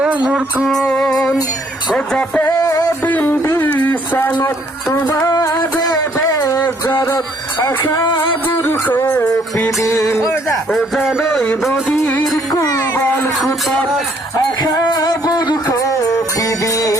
মোর কুন ও যাতে দিন দিসানত তোমার বেজারত আশা বুড়ো কপিদিন ও জানোই নদীর কুবাল খুতত আশা বুড়ো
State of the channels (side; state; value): both; normal; correlation 0.65